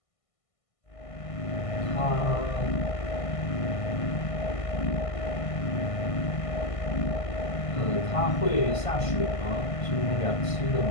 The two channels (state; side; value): late; right; 1.5 ms